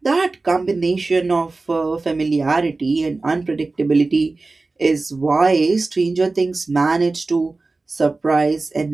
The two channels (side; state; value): left; quieter; 3.5 dB